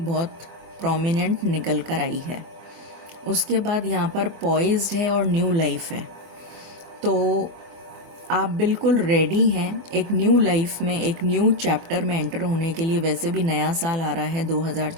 प्रोमिनेंट निकल कर आई है। उसके बाद यहाँ पर पॉइज्ड है और न्यू लाइफ है। तो आप बिल्कुल रेडी हैं एक न्यू लाइफ में, एक न्यू चैप्टर में एंटर होने के लिए। वैसे भी नया साल आ रहा है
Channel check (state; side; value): late; left; 24 ms